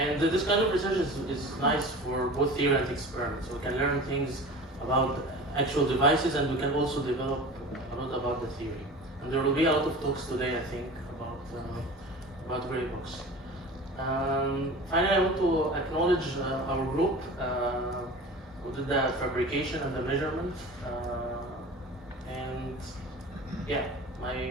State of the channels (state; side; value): normal; both; correlation 0.37